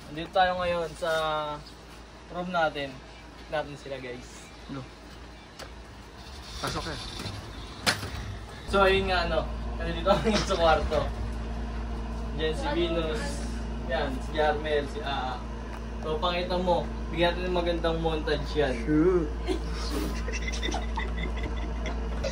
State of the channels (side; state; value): both; identical; correlation 1.00